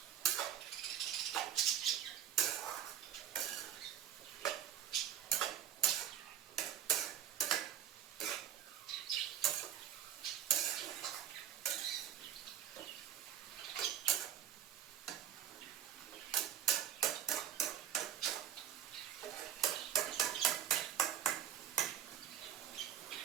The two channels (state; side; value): quieter; left; 10.1 dB